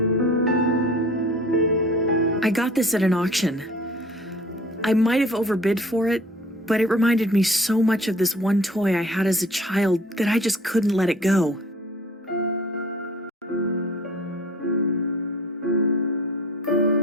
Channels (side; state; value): both; normal; correlation 0.47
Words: I got this at an auction. I might have overbid for it, but it reminded me so much of this one toy I had as a child that I just couldn't let it go.